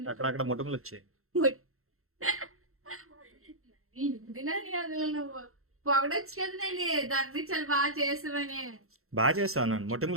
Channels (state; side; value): late; left; 0.62 ms